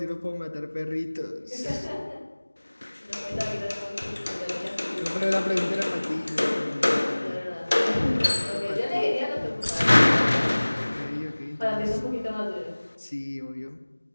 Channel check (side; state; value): both; inverted; correlation -1.00